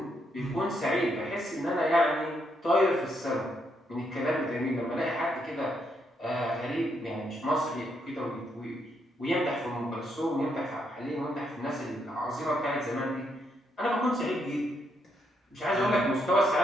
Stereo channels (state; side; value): normal; both; correlation 0.76